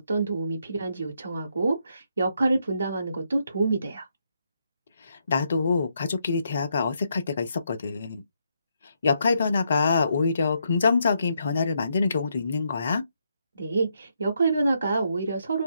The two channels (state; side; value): inverted; both; correlation -0.77